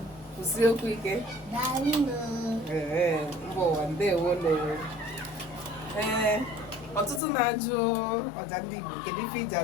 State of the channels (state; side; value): drops out; right; at 7.2 s